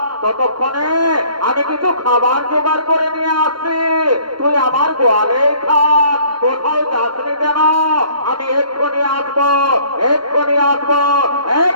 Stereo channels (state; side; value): late; left; 0.72 ms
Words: ততক্ষণে আমি কিছু খাবার জোগাড় করে নিয়ে আসছি, তুই আমার গোয়ালে থাক, কোথাও যাসনি কেন? আমি এক্ষুনি আসবো, এক্ষুনি আসবো,